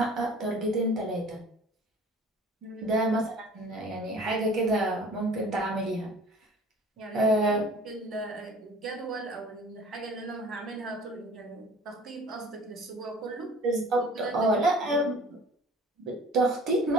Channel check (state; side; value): normal; both; correlation 0.47